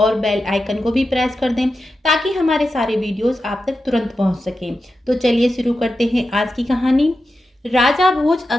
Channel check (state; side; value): normal; both; correlation 0.91